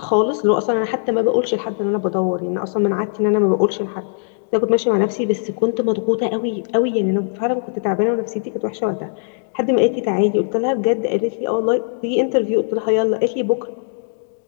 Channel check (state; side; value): silent; right; digital silence